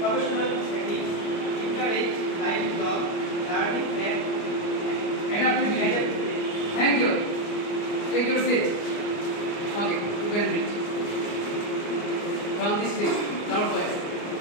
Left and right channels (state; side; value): late; right; 29 ms